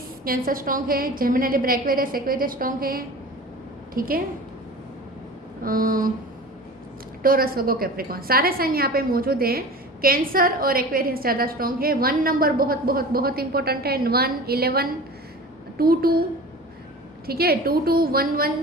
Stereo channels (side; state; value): both; normal; correlation 0.36